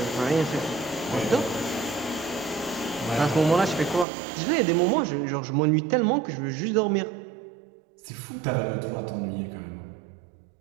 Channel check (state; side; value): drops out; left; at 4.0 s